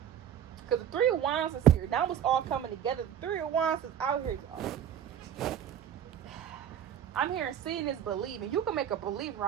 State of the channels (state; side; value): quieter; left; 9.7 dB